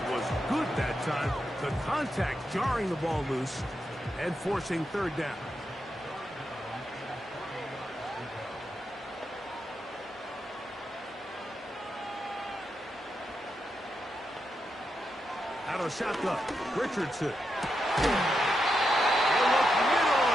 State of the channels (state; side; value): normal; both; correlation 0.85